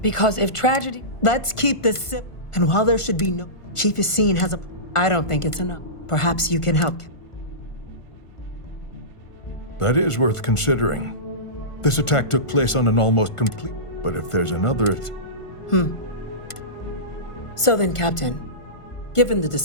because if tragedy... Let's keep this sip. And while there should be no... Chief Yassine has a... I don't think it's enough. Perhaps you can help. That is worth considering. This attack took place on an almost complete... But if there's another... So then, Captain, given the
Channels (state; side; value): late; right; 1.5 ms